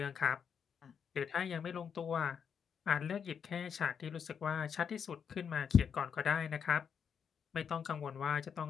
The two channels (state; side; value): quieter; right; 7.2 dB